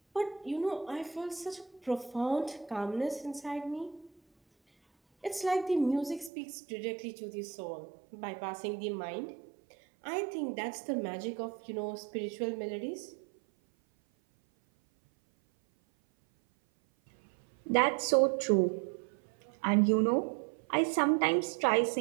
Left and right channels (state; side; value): drops out; left; at 6.3 s